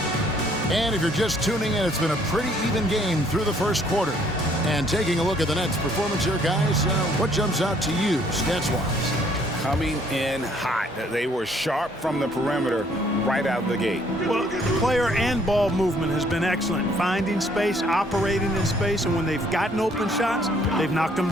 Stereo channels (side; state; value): both; normal; correlation 0.63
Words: And if you're just tuning in, it's been a pretty even game through the first quarter. And taking a look at the Nets' performance here, guys, what jumps out to you, stats-wise? Coming in hot. They were sharp from the perimeter right out of the gate. Well, player and ball movement has been excellent. Finding space, operating in space, and when they've gotten open shots, they've knocked them